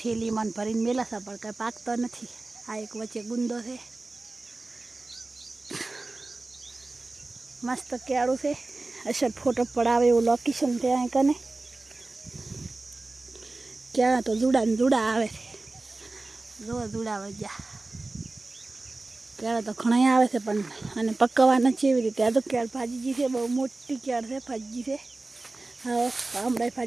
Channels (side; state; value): left; quieter; 3.2 dB